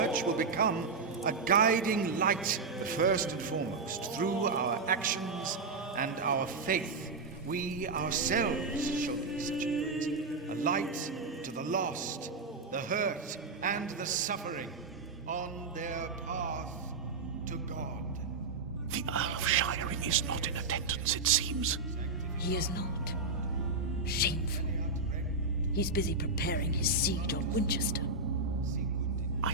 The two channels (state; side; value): quieter; left; 3.9 dB